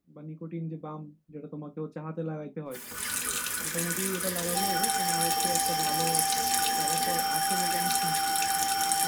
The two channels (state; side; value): identical; both; correlation 1.00